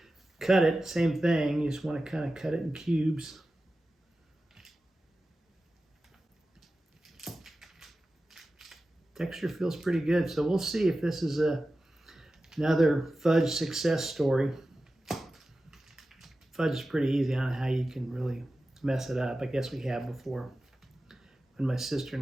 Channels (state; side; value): normal; both; correlation 0.94